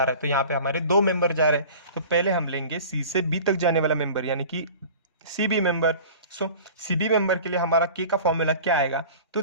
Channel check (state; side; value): inverted; both; correlation -0.41